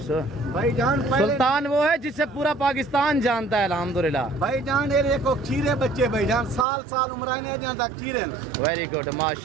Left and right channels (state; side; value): drops out; left; at 6.7 s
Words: भाई जान सुल्तान वो है जिसे पूरा पाकिस्तान जानता है अल्हम्दुलिल्लाह। भाई जान ये देखो खीरे बच्चे भाई जान साल उम्र नहीं जानता खीरे। वेरी गुड